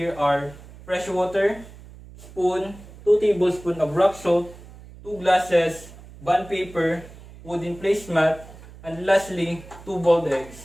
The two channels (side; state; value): right; noise; hum, 19 dB below the sound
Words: are fresh water, spoon, 2 tablespoons of rock salt, 2 glasses, bond paper, wooden placemat, and lastly, 2 boiled